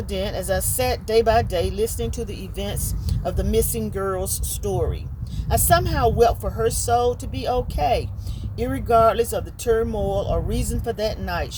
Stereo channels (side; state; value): both; identical; correlation 1.00